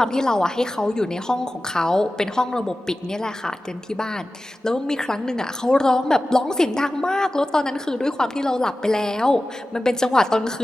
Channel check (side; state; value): both; normal; correlation 0.95